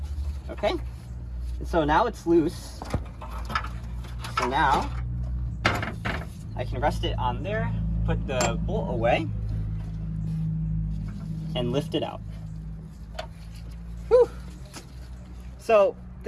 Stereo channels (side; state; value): both; identical; correlation 1.00